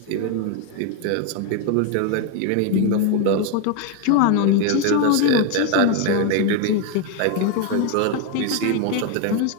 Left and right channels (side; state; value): both; different; correlation 0.01